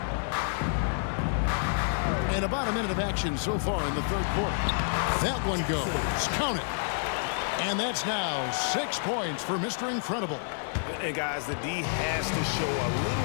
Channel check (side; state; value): right; silent; digital silence